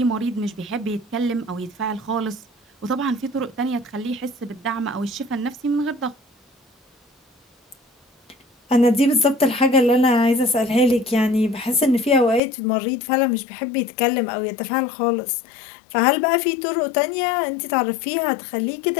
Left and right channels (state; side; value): drops out; right; at 12.4 s